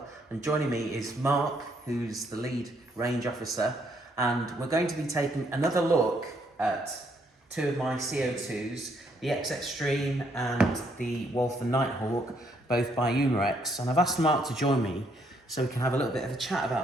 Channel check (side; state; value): both; normal; correlation 0.71